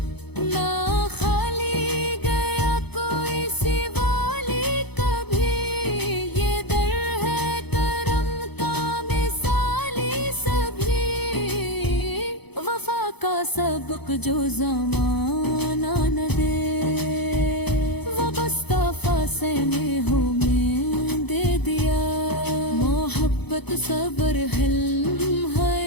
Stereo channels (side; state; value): right; late; 0.98 ms